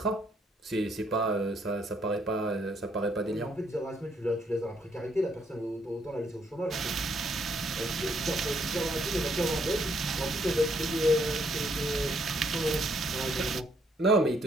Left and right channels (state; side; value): normal; both; correlation 0.71